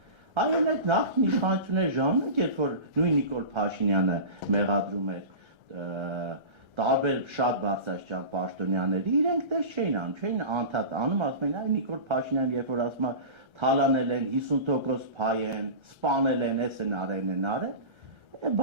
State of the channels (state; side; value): late; left; 1.3 ms